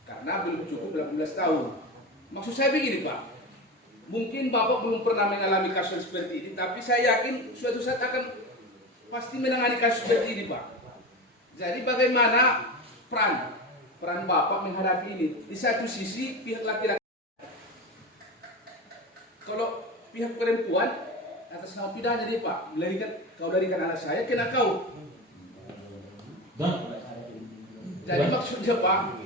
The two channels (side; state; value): both; normal; correlation 0.25